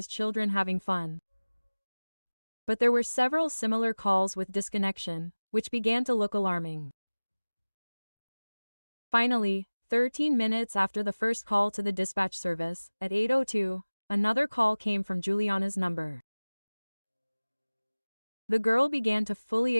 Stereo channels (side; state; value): both; inverted; correlation -1.00